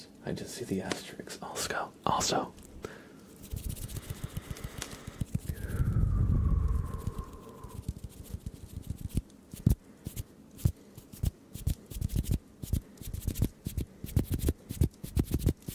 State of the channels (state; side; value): identical; both; correlation 1.00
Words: I just see the asterisks also.